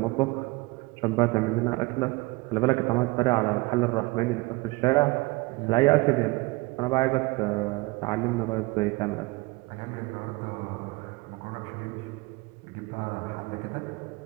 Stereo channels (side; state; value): left; quieter; 23.9 dB